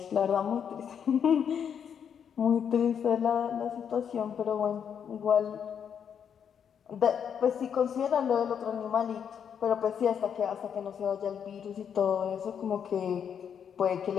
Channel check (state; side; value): quieter; right; 7.9 dB